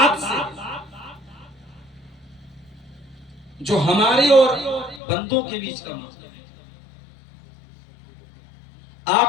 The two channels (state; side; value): drops out; right; at 5.0 s